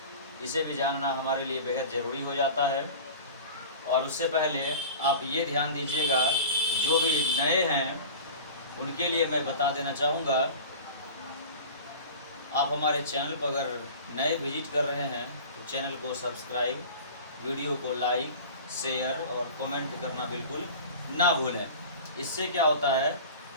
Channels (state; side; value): inverted; both; correlation -0.37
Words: इसे भी जानना हमारे लिए बेहद ज़रूरी हो जाता है। और उससे पहले आप ये ध्यान दीजिएगा, जो भी नए हैं उनके लिए मैं बता देना चाहूँगा, आप हमारे चैनल पर अगर नए विजिट कर रहे हैं तो चैनल को सब्सक्राइब, वीडियो को लाइक, शेयर और कमेंट करना बिल्कुल ना भूलें। इससे क्या होता है,